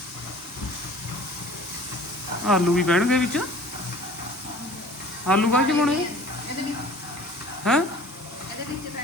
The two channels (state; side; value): normal; both; correlation 0.47